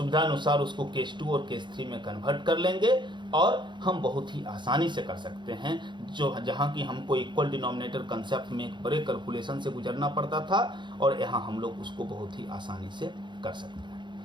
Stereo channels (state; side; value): late; left; 0.23 ms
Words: अनुसार उसको केस 2 और केस 3 में कन्वर्ट कर लेंगे और हम बहुत ही आसानी से कर सकते हैं। जो जहाँ की हमको इक्वल डिनोमिनेटर कंसेप्ट में एक बड़े कैलकुलेशन से गुजरना पड़ता था और यहाँ हम लोग उसको बहुत ही आसानी से कर सकते